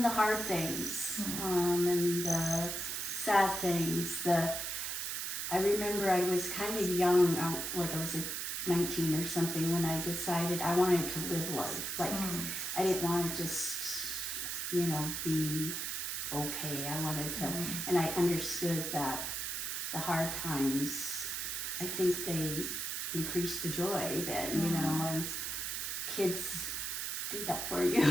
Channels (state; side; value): noise; right; hiss, 3 dB below the sound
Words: the hard things, and the sad things. I remember I was kind of young, like I was 19 or something, when I decided I wanted to live life. Like, I didn't want to just, be okay. I wanted to, and I understood that the hard times, I think they increase the joy then, you know, and kids do that for you